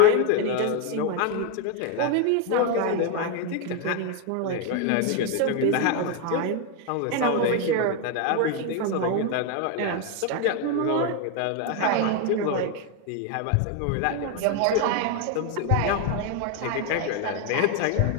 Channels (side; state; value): both; different; correlation 0.01